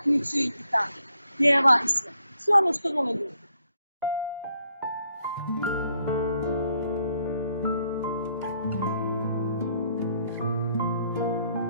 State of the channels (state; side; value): inverted; both; correlation -0.72